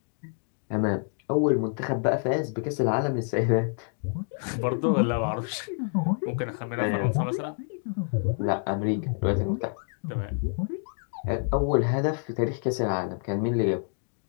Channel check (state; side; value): silent; right; 55 dB below the other